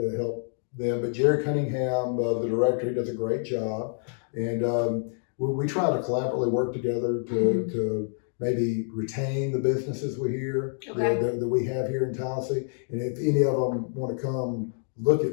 help them. But Jerry Cunningham, the director, he does a great job, and we try to collaboratively work together to maybe retain the businesses that we have here in Tallassee. And if any of them want to come look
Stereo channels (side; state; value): right; silent; digital silence